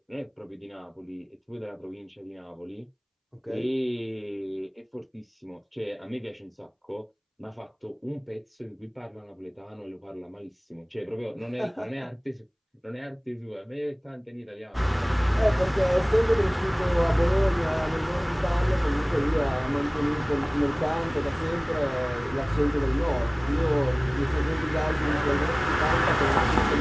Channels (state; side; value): identical; both; correlation 1.00